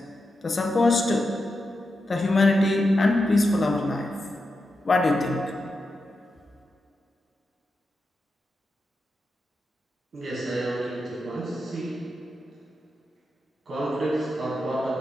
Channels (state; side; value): normal; both; correlation 0.88